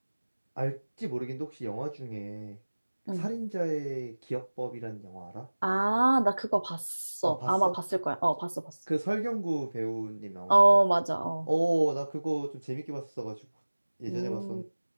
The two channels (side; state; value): both; inverted; correlation -1.00